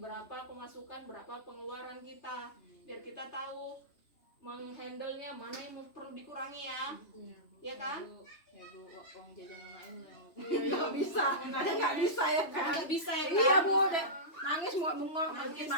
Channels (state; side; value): late; right; 3.1 ms